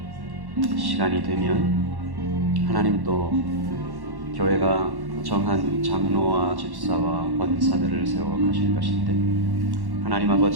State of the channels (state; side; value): late; left; 1.1 ms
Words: 시간이 되면 하나님 또 교회가 정한 장로와 집사와 권사들을 세워 가실 것인데, 하나님